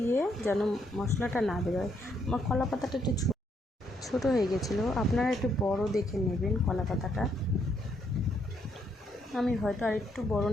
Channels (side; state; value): both; normal; correlation 0.73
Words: যেন মশলাটা না বেরোয়। আমার কলা পাতাটা একটু ছোটো হয়ে গেছিলো, আপনারা একটু বড় দেখে নেবেন কলা পাতাটা। আমি হয়তো আর একটু বড়